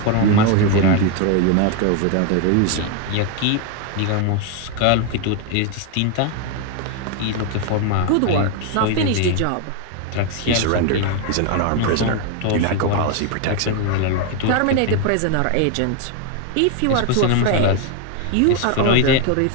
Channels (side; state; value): both; different; correlation 0.01